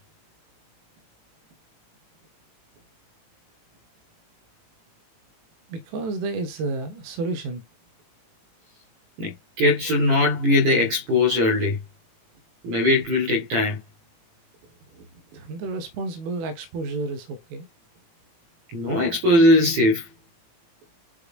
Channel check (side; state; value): left; late; 18 ms